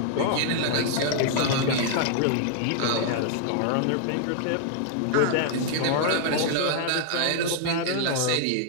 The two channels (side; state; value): both; different; correlation 0.00